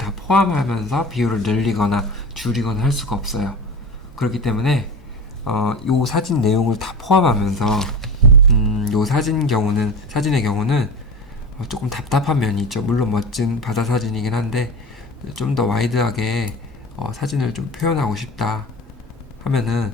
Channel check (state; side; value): normal; both; correlation 0.29